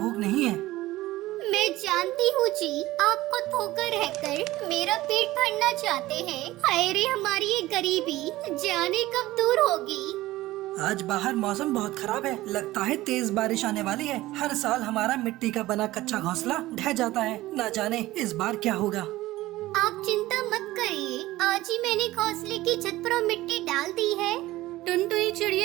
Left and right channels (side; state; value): left; quieter; 17.2 dB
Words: नहीं है। मैं जानती हूँ जी, आपको धोखा रहकर मेरा पेट भरना चाहते हैं। हाय रे हमारी ये गरीबी, जाने कब दूर होगी। आज बाहर मौसम बहुत खराब है, लगता है तेज बारिश आने वाली है। हर साल हमारा मिट्टी का बना कच्चा घोंसला ढह जाता है, न जाने इस बार क्या होगा। आप चिंता मत करिए, आज ही मैंने घोंसले की छत पर मिट्टी डाल दी है। टुनटुनी